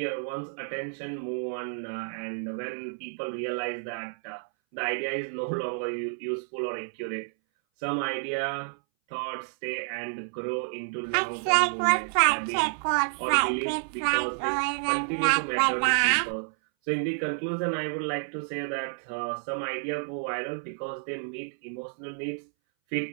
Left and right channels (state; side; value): silent; left; 58 dB below the other